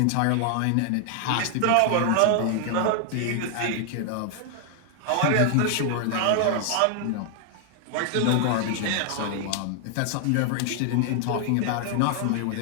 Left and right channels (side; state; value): both; different; correlation 0.00